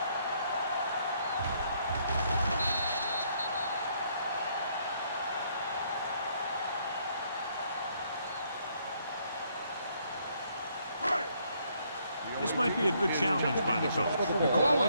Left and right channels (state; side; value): inverted; both; correlation -0.70